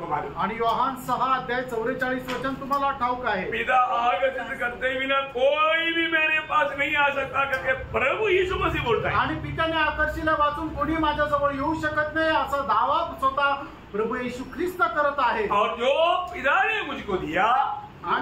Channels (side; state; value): both; identical; correlation 1.00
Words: मालूम, आणि योहान 6 अध्याय 44 वचन तुम्हाला ठाऊक आहे? पिता आगत करते बिना कोई भी मेरे पास नहीं आ सकता करके प्रभु यीशु मसीह बोलता है। आणि पित्याने आकर्षिले वाचून कोणी माझ्याजवळ येऊ शकत नाही असा दावा स्वतः प्रभु येशू ख्रिस्त करत आहे। और जो पिता ने मुझको दिया